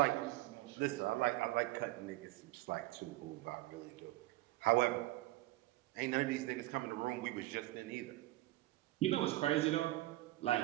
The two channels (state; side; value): quieter; left; 17.9 dB